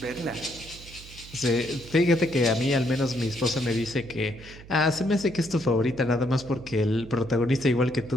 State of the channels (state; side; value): noise; right; hum, 18 dB below the sound